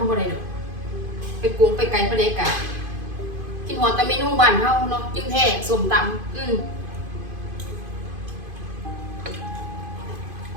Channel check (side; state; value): left; late; 2.5 ms